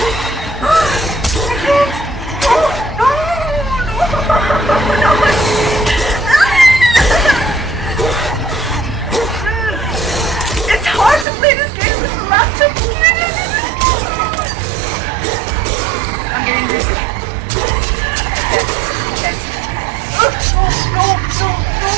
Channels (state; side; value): drops out; left; at 11.2 s